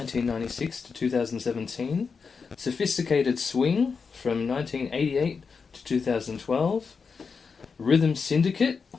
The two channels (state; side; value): quieter; right; 5.3 dB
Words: to 2017, Sophisticated Swing from 1988 to 2012, Rhythm Syndicate,